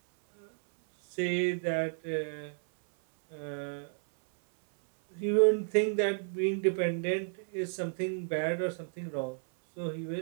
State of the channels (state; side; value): silent; left; 57 dB below the other